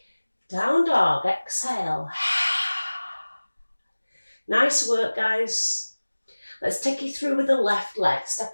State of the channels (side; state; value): both; inverted; correlation -1.00